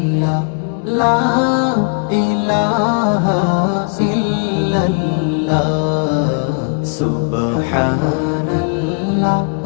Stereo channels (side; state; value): right; quieter; 36.8 dB